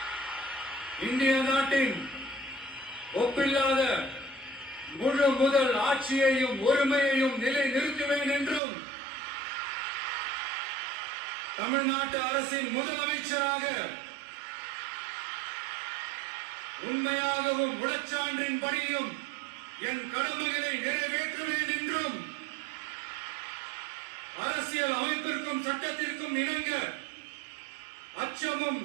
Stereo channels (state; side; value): drops out; left; at 8.6 s